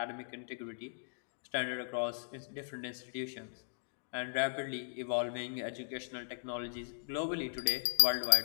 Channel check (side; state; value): right; silent; digital silence